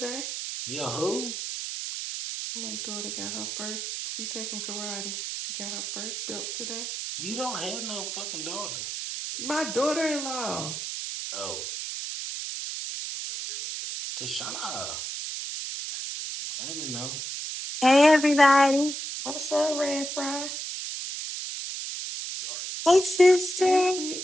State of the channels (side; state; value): right; noise; hiss, 5 dB below the sound